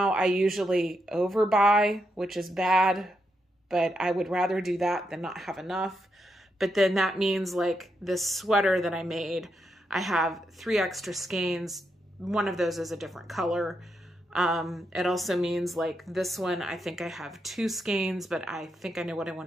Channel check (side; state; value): both; normal; correlation 0.82